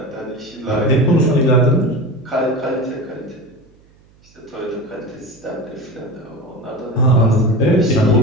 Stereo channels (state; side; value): noise; right; hum, 30 dB below the sound